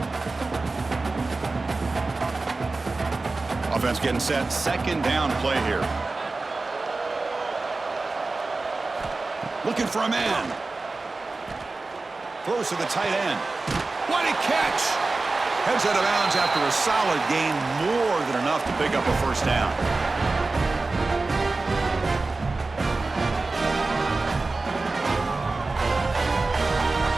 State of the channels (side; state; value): left; quieter; 3.5 dB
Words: Offense getting set. Second down play here. Looking for a man. Throws to the tight end. What a catch! Heads out of bounds after a solid gain, more than enough to pick up a first down.